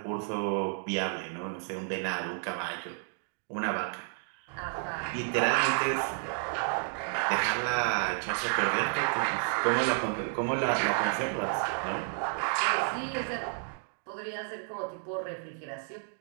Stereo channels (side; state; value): left; silent; 57 dB below the other